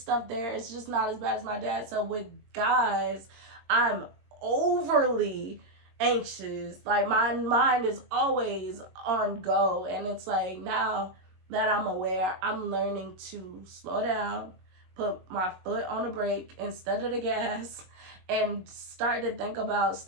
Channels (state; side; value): late; left; 22 ms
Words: there. It's just not as bad as my dad. So with guys, I'm overly anxious. Like my mind is always on go, and it's like, now that I'm aware, I'm learning to slow down, put my foot on the brake instead of the gas, and start to think about